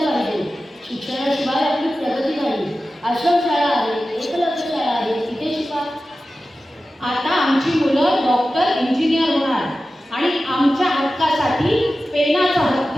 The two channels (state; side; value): normal; both; correlation 0.94